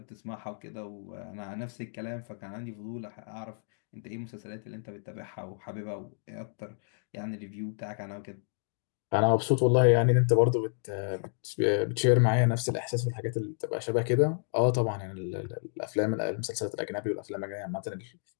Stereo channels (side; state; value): right; silent; digital silence